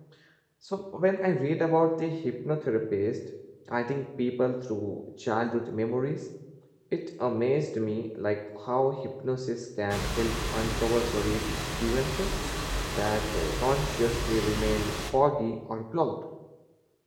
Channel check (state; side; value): identical; both; correlation 1.00